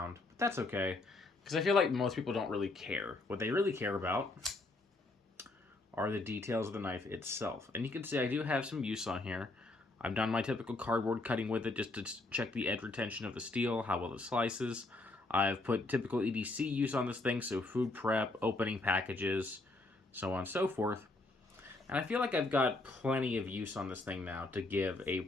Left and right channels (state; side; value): quieter; right; 3.0 dB